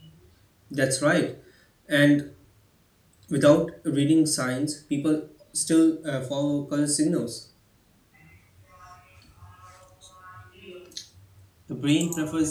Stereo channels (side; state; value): both; identical; correlation 1.00